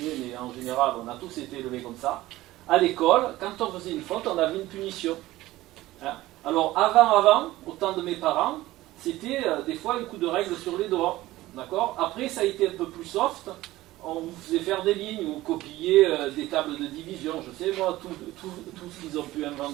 mais en général, on a tous été élevés comme ça. À l'école, quand on faisait une faute, on avait une punition. Alors, avant, au temps de mes parents, c'était des fois un coup de règle sur les doigts. D'accord? Après, ça a été un peu plus soft. On vous faisait faire des lignes ou copier des tables de division. Je sais, moi, tout ce qu'ils ont pu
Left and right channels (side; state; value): left; quieter; 17.0 dB